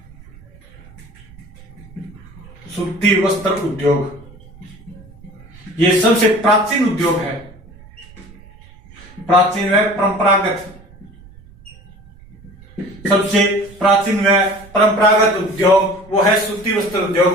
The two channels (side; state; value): right; noise; rumble, 22 dB below the sound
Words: सूती वस्त्र उद्योग ये सबसे प्राचीन उद्योग है। प्राचीन व परंपरागत, सबसे प्राचीन व परंपरागत उद्योग वो है सूती वस्त्र उद्योग।